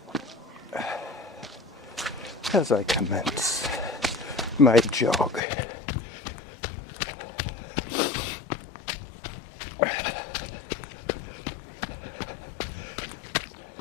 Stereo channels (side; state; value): right; drops out; at 5.4 s